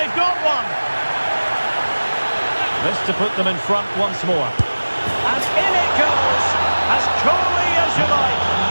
got one. This to put them in front once more. And in it goes, as coolly as you like.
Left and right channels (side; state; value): both; inverted; correlation -1.00